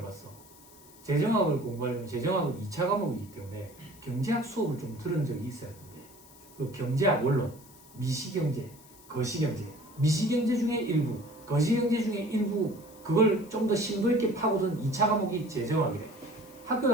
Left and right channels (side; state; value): left; noise; hiss, 23 dB below the sound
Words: 재정학을 공부하려면 재정학은 2차 과목이기 때문에 경제학 수업을 좀 들은 적이 있어야 되는데, 그 경제학 원론, 미시경제, 거시경제, 미시경제 중에 일부, 거시경제 중에 일부, 그걸 좀 더 심도 있게 파고든 2차 과목이 재정학이래. 학교